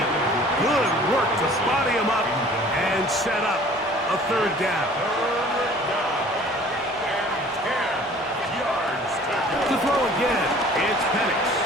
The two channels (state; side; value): normal; both; correlation 0.50